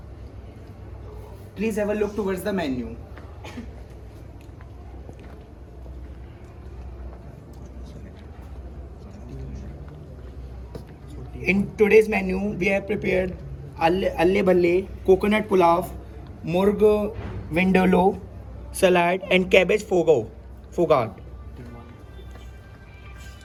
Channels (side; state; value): both; identical; correlation 1.00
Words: Please have a look towards the menu. In today's menu, we have prepared alle bhalle, coconut pulao, murg vindaloo, salad and cabbage fogart.